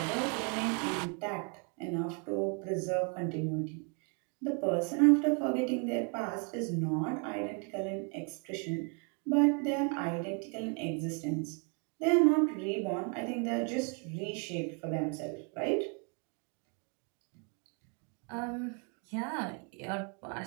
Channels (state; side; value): quieter; left; 37.3 dB